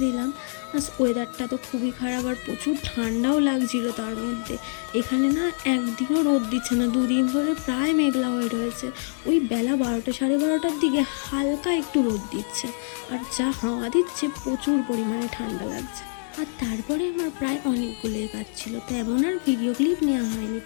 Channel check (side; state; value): right; silent; digital silence